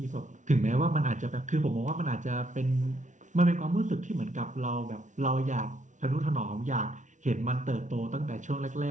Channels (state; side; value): late; left; 0.36 ms